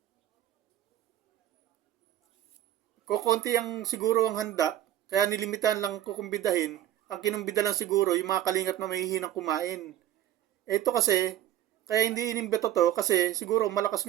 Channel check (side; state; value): left; quieter; 12.1 dB